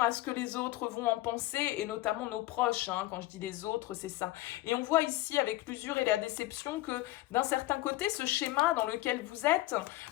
ce que les autres vont en penser, et notamment nos proches, hein, quand je dis les autres, c'est ça. Et on voit ici, avec l'usure et la déception, que d'un certain côté, ce schéma dans lequel vous êtes,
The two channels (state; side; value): quieter; right; 17.1 dB